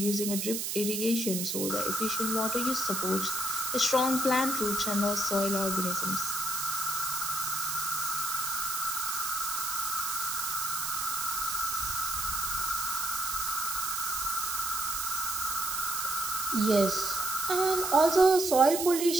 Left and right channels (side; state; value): right; noise; hiss, 2 dB below the sound